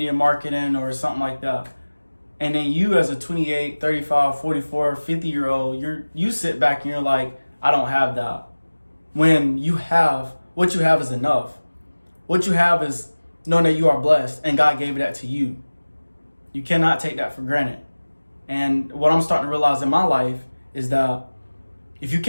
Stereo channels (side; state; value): both; inverted; correlation -1.00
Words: marketing or something like that. And then you as a 28, 35, 44, 50-year-old, you sit back and you're like, I don't have that. When what you have is enough. What you have is knowing that you are blessed and God gave that to you. You cannot take that for granted. And what I'm starting to realize in my life is that if you